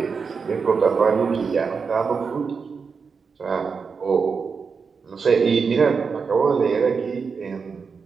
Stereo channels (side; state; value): left; quieter; 5.4 dB